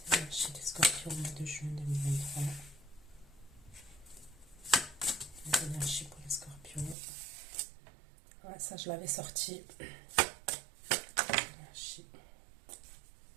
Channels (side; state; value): left; drops out; at 7.0 s